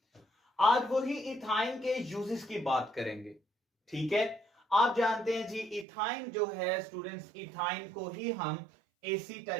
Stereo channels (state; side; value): drops out; left; at 5.9 s